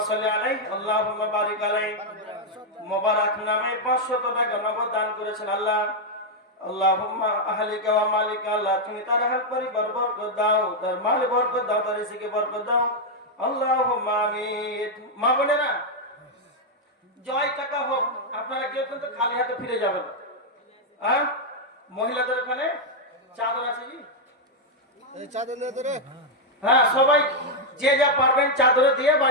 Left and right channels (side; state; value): both; normal; correlation -0.01